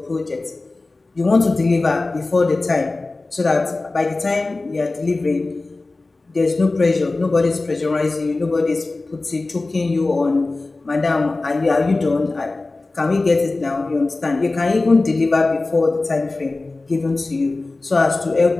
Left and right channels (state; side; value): quieter; right; 3.3 dB